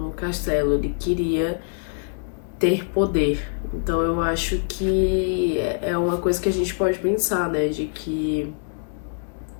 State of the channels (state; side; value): silent; right; digital silence